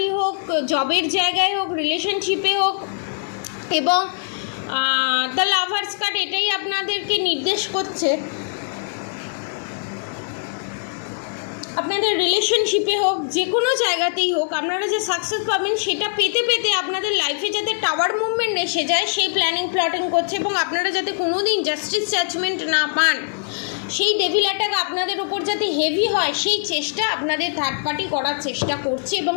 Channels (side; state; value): right; silent; digital silence